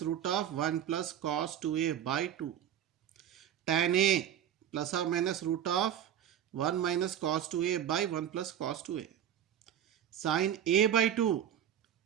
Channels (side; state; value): left; quieter; 9.9 dB